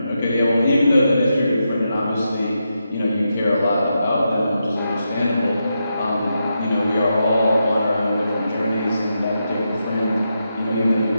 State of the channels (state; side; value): inverted; both; correlation -0.86